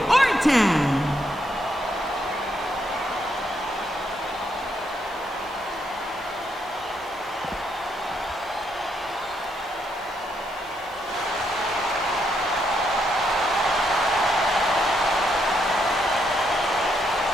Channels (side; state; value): right; noise; hiss, 25 dB below the sound